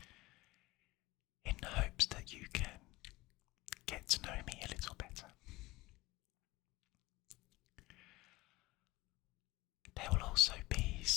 in the hopes that you can get to know me a little better. There will also be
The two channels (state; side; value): quieter; right; 20.2 dB